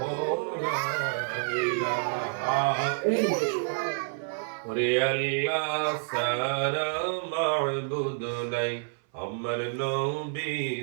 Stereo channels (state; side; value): silent; left; 56 dB below the other